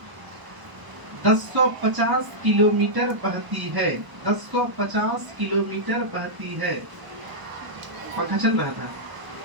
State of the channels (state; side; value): late; left; 1.0 ms